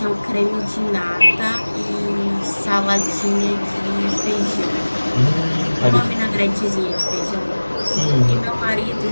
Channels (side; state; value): both; inverted; correlation -1.00